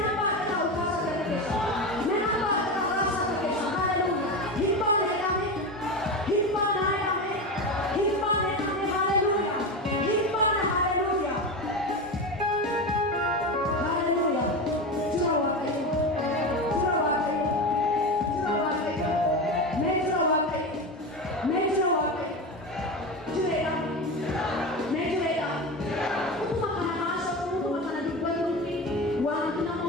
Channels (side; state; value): both; normal; correlation 0.21